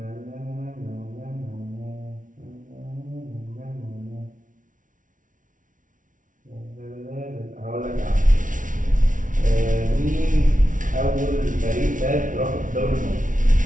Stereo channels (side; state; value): left; late; 0.38 ms